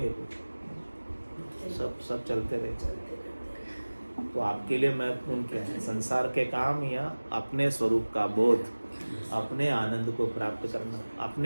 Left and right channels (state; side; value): inverted; both; correlation -1.00